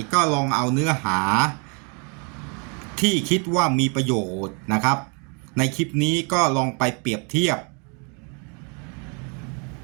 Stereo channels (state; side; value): quieter; left; 35.9 dB